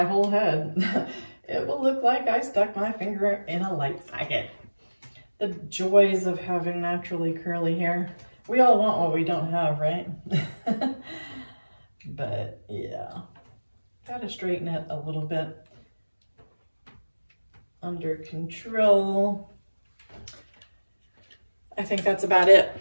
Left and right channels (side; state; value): both; inverted; correlation -1.00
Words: whole head. It will look like I stuck my finger in a light socket. The joys of having naturally curly hair. We all want what we don't have, right? But yeah, gotta straighten it a little bit. Under control. I think that's about it.